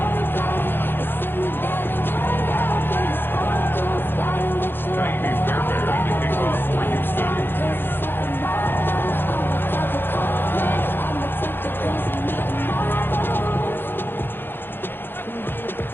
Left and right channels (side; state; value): right; late; 0.10 ms